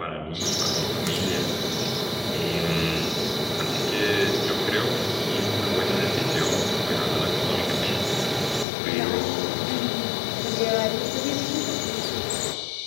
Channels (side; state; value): right; drops out; at 8.7 s